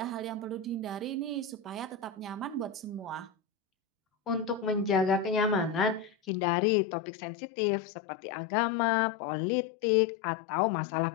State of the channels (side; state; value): right; drops out; at 6.3 s